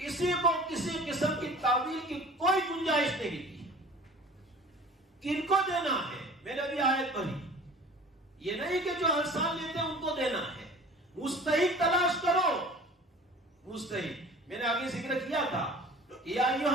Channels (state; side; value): normal; both; correlation 0.44